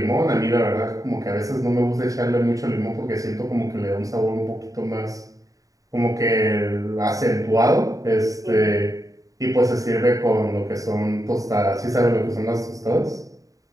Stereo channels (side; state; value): left; late; 0.16 ms